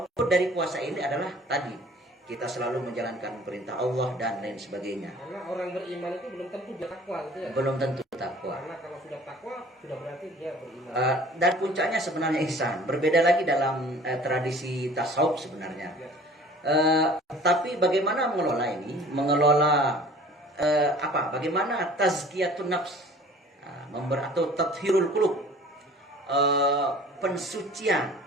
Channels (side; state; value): both; normal; correlation 0.48